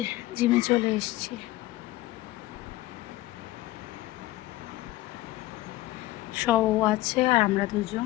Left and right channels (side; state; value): right; quieter; 17.7 dB